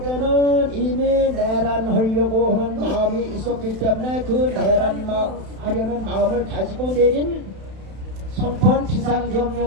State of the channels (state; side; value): late; left; 31 ms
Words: 이미 내란하려고 하는 마음이 있었기 때문에 그 내란하려는 마음을 가지고 내린 선포한